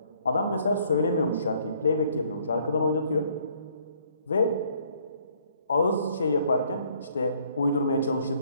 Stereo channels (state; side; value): inverted; both; correlation -0.63